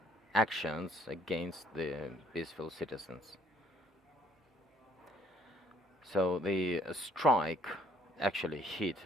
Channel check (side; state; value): both; normal; correlation 0.64